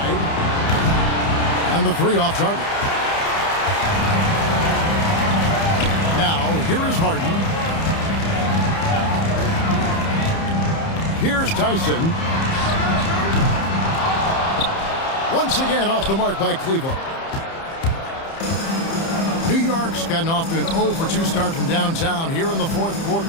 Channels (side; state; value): right; late; 30 ms